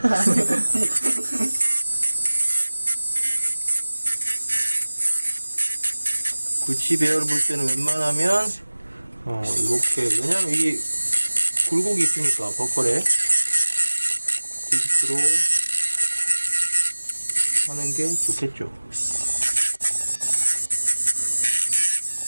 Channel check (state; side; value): inverted; both; correlation -1.00